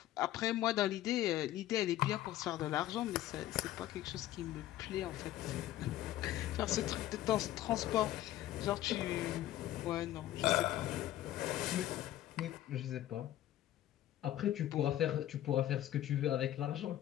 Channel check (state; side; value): quieter; right; 13.7 dB